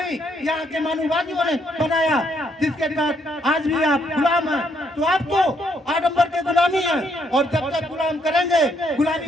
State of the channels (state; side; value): normal; both; correlation 0.73